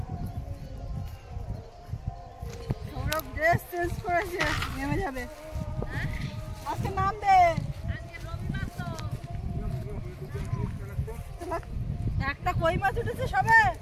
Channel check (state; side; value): identical; both; correlation 1.00